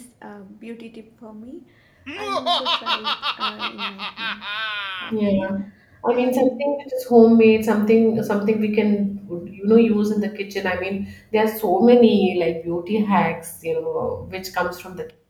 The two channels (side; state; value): both; identical; correlation 1.00